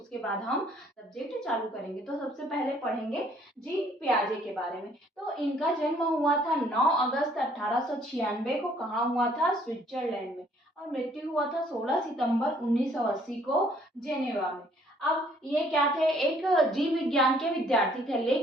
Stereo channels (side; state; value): both; normal; correlation 0.62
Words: बाद हम सब्जेक्ट चालू करेंगे। तो सबसे पहले पढ़ेंगे जीन पियाजे के बारे में। तो इनका जन्म हुआ था 9 अगस्त 1896 को। कहाँ हुआ था? स्विट्जरलैंड में। और मृत्यु हुआ था 16 सितंबर 1980 को जेनेवा में। अब ये क्या थे? एक जीव विज्ञान के विद्यार्थी थे,